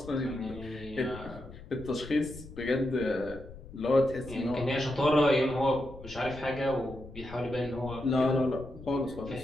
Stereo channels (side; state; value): left; noise; rumble, 15 dB below the sound